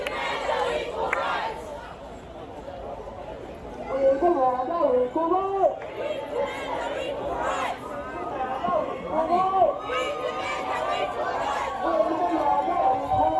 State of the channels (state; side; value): identical; both; correlation 1.00